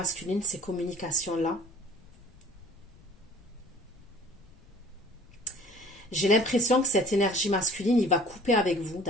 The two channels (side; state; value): left; noise; rumble, 25 dB below the sound